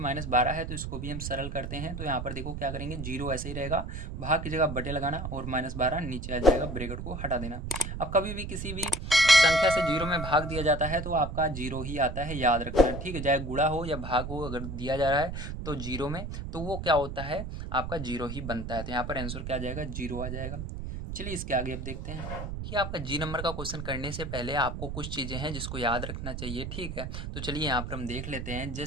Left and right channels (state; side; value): noise; right; rumble, 6 dB below the sound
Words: है, तो इसको भी हम सरल करते हैं। तो यहाँ पर देखो क्या करेंगे, 0 ऐसे ही रहेगा, भाग की जगह बटे लगाना और -12 नीचे आ जाएगा, ब्रैकेट को हटा देना। अब कभी भी किसी भी संख्या से 0 में भाग दिया जाता है तो आपका 0 ही आता है, याद रखना। ठीक है, चाहे गुणा हो या भाग हो, अगर दिया जा रहा है तो 0 में, तो वो क्या होता है, आपका 0 ही बनता है। तो यहाँ पर आंसर क्या आ जाएगा, 0 आ जाएगा। चलिए इसके आगे अब देखते हैं। ये आपका जी नंबर का क्वेश्चन करने से पहले आपको कुछ चीज़ें हैं जिसको याद रखना चाहिए। ठीक है, तो चलिए यहाँ पर हम देख लेते हैं।